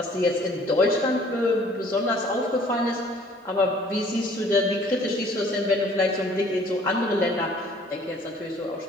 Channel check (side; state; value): both; normal; correlation 0.55